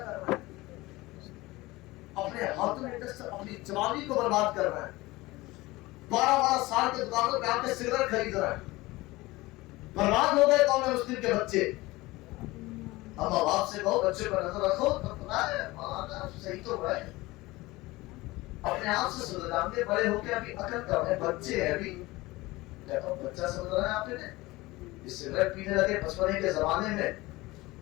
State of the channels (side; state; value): right; quieter; 20.3 dB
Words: رہے ہیں. اپنے ہاتھوں میں اپنی جوانی کو برباد کر رہے ہیں. 12 سال کے دکانوں پہ آ کے سگریٹ خرید رہے ہیں. برباد ہو گئے قوم مسلم کے بچے. اب باپ سے کہو بچے پر نظر رکھو تو پتا ہے صحیح تو ہوا ہے. اپنے آپ سے سمجھ جانتے بڑے ہو کے ابھی عقل کم ہے بچے ہیں. ابھی کہتا ہوں بچہ سمجھ رہا ہے آپ نے سگریٹ پینے لگے بچپنے کے زمانے میں